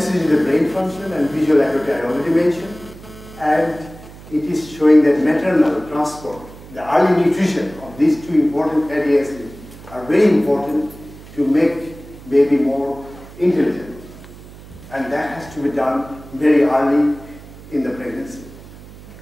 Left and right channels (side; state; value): right; noise; hum, 18 dB below the sound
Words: with brain function and visual acuity I already mentioned. And it is showing that maternal transport, the early nutrition of these two important fatty acids are very important to make baby more intelligent. And that has to be done very early in the pregnancy.